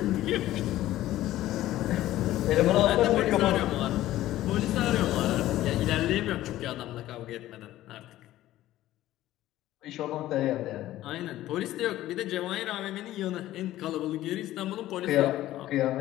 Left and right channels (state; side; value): quieter; right; 14.7 dB